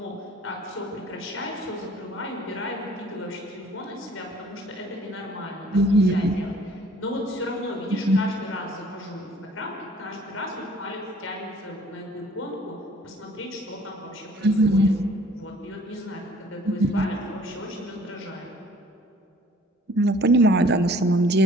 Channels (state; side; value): normal; both; correlation 0.54